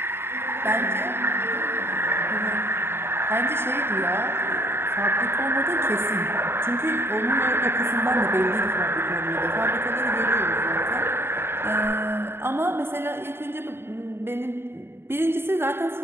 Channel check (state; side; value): late; left; 0.11 ms